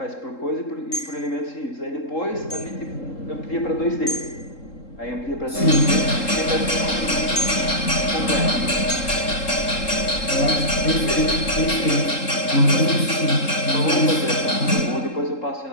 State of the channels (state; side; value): late; right; 3.7 ms